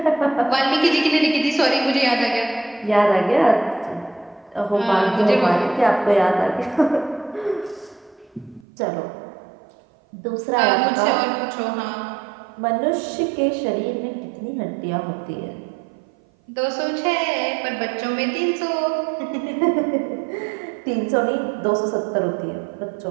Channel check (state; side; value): drops out; left; at 8.7 s